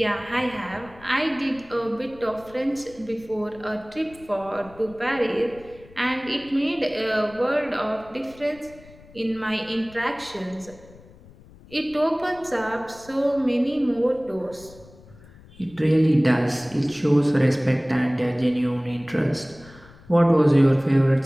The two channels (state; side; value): noise; left; rumble, 23 dB below the sound